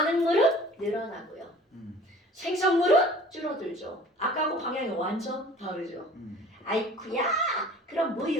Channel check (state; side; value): normal; both; correlation 0.46